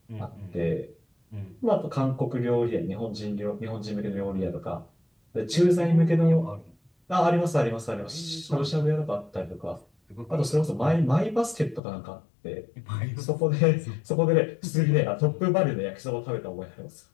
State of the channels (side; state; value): right; drops out; at 11.8 s